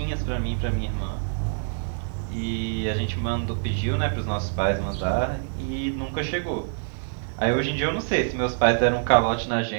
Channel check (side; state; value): left; silent; 58 dB below the other